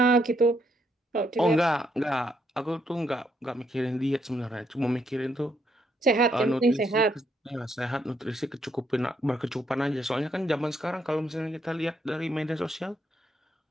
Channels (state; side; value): normal; both; correlation 0.75